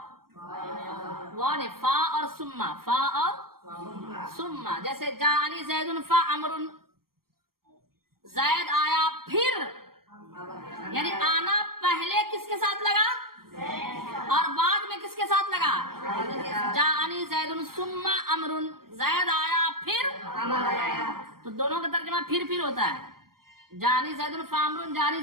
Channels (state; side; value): late; left; 0.93 ms